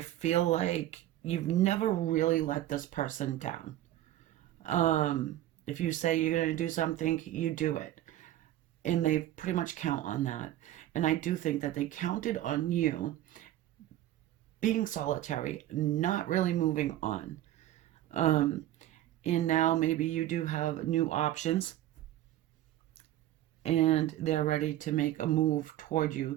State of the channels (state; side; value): quieter; left; 13.6 dB